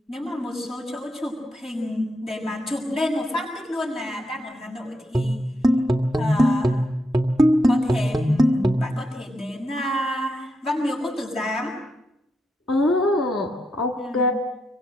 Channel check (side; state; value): both; normal; correlation 0.83